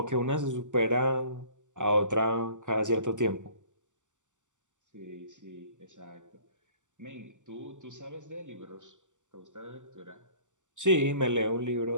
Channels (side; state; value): left; late; 0.86 ms